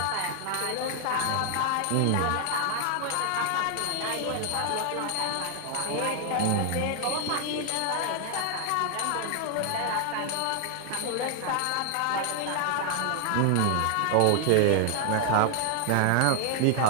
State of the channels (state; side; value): different; both; correlation 0.00